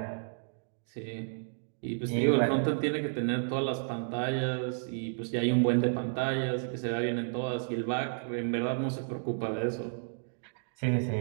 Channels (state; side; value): silent; left; digital silence